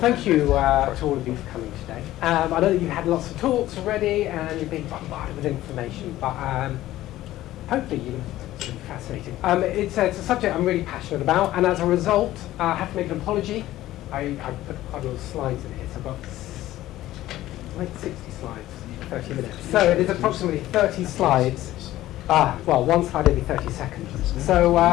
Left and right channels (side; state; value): right; quieter; 15.0 dB